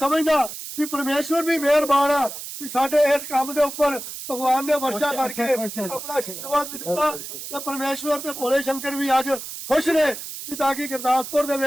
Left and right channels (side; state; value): right; noise; hiss, 9 dB below the sound